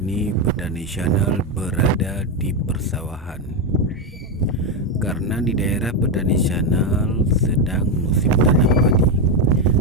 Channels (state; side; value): normal; both; correlation 0.08